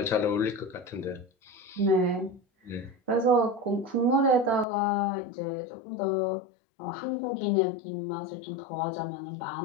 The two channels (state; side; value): drops out; right; at 4.7 s